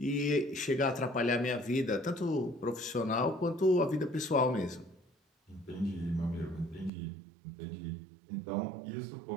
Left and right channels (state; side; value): drops out; left; at 6.9 s